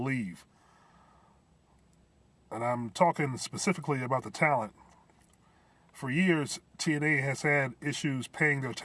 leave. And I'm talking specifically about the talent. For years, TNA has had issues paying their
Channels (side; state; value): both; identical; correlation 1.00